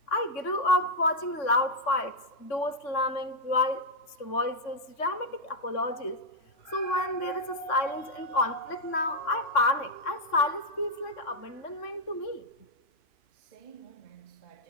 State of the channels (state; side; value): late; right; 3.5 ms